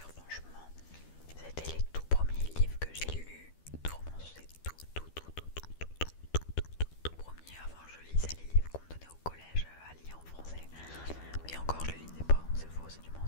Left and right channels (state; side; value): late; right; 12 ms